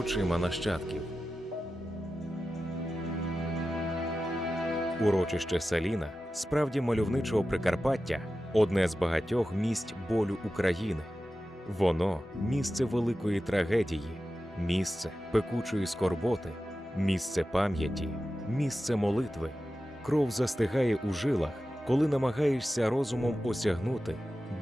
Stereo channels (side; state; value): both; normal; correlation 0.93